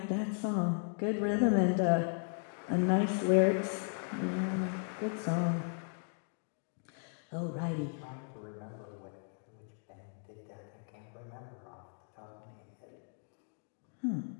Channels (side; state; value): right; silent; 54 dB below the other